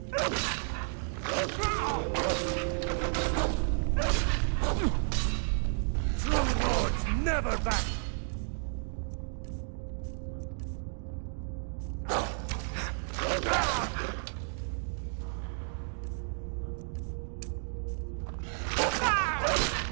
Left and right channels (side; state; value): left; silent; 56 dB below the other